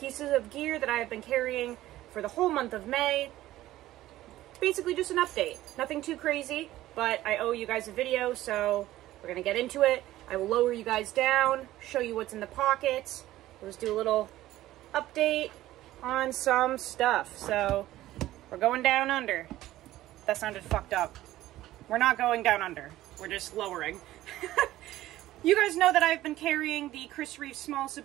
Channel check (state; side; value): quieter; left; 15.1 dB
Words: of gear that I have been carrying for the whole month of May. Basically just an update. Nothing too crazy, but I owe you guys a video, so we're gonna get into it. I will lower you guys down, show you what's in the pockets. We'll just do a little update on some stuff. So, we're going down under. That sounded fucked up. We're not going down under. We're just lowering. You guys know that I've been carrying the Chris Reeve Small